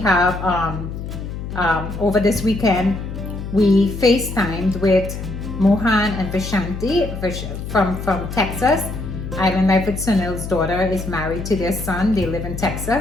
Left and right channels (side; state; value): left; noise; hum, 7 dB below the sound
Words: over this weekend, we FaceTimed with Mohan and Vishanti from Texas. Island Life with Sunil's daughter is married to their son. They live in